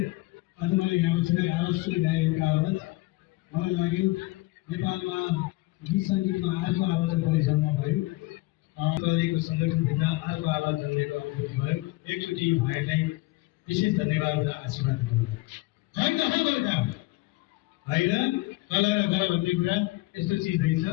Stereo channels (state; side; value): quieter; right; 21.2 dB